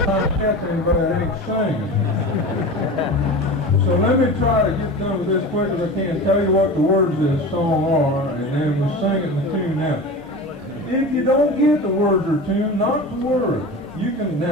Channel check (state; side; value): normal; both; correlation 0.31